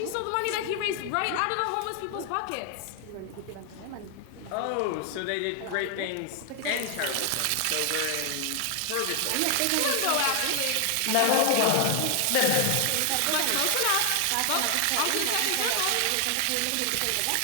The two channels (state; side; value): different; both; correlation 0.00